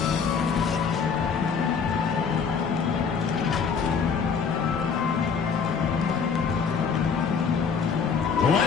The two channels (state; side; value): quieter; right; 6.1 dB